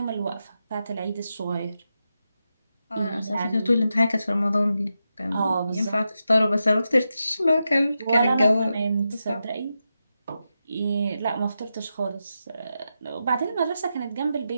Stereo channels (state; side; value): inverted; both; correlation -0.88